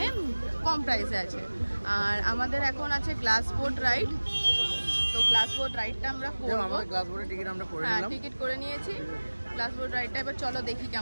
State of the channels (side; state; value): both; inverted; correlation -1.00